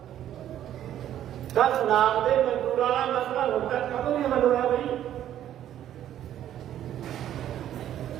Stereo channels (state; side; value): quieter; left; 11.4 dB